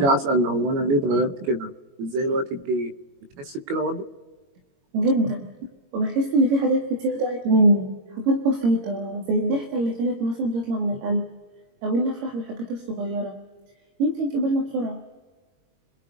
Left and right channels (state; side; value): late; left; 22 ms